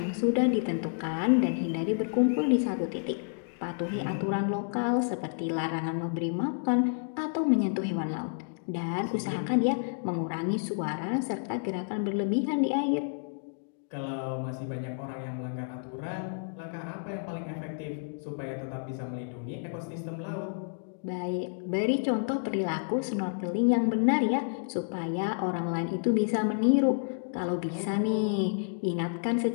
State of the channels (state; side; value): silent; right; digital silence